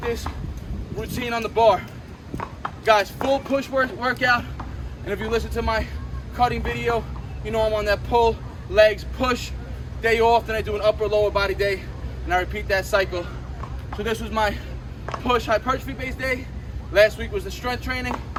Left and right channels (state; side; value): identical; both; correlation 1.00